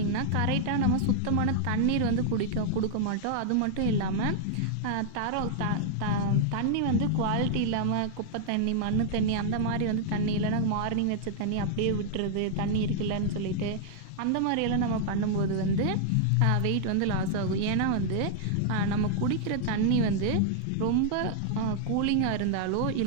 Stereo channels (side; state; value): both; different; correlation -0.01